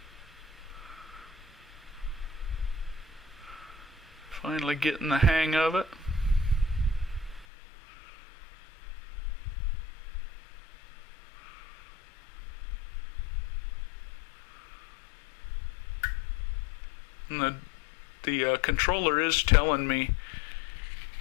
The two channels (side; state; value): right; drops out; at 7.5 s